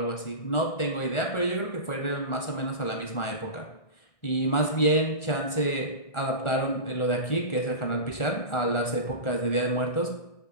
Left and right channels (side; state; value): right; late; 1.4 ms